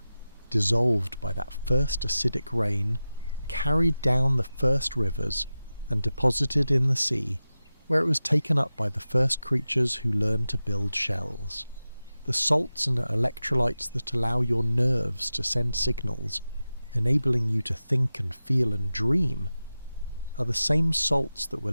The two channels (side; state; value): both; inverted; correlation -0.94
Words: dissolved by that first acidic rain, carried down the first rivers, and deposited in the sea, where it was taken up by the first creatures who learned to build shells. The salts and electrolytes that allow your nerves to send signals, enabling you to think and feel and dream, are the same salts that were